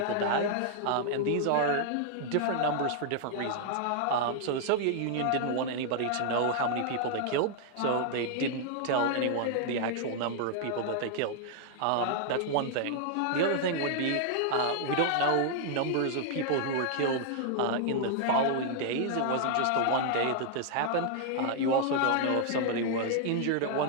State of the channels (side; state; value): both; different; correlation 0.00